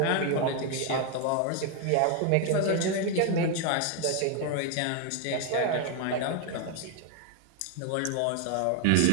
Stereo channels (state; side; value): different; both; correlation 0.01